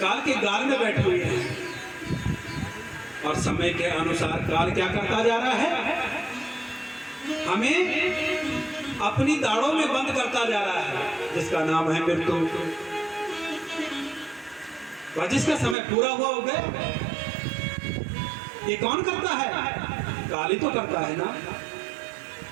के गाल में बैठे हुए हैं और समय के अनुसार काल क्या करता जा रहा है? हमें अपनी दाढ़ों में बंद करता जा रहा है, जिसका नाम है मृत्यु। और जिसका समय पूरा हुआ हो गया, ये कौन करता है? काल ही तो करता है ना।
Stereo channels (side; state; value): left; drops out; at 15.8 s